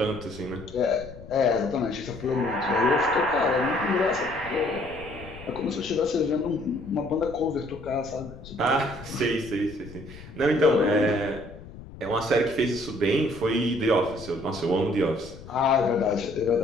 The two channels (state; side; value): noise; left; rumble, 16 dB below the sound